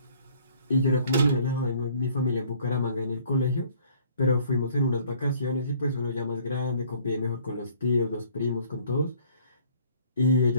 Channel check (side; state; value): both; inverted; correlation -0.57